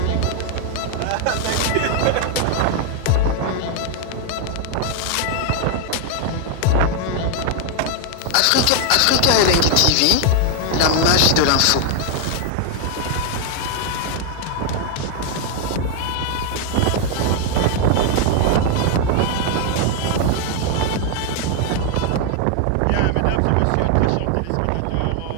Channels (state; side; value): different; both; correlation 0.01